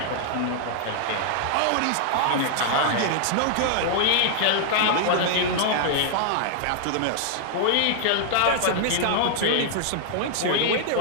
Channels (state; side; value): different; both; correlation -0.01